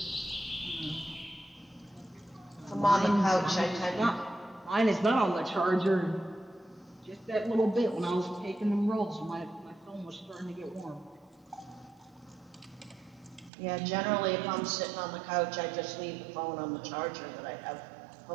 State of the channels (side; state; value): left; drops out; at 13.5 s